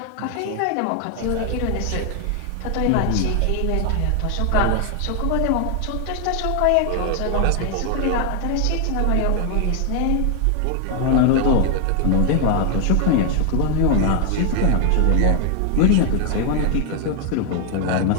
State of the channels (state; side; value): different; both; correlation 0.00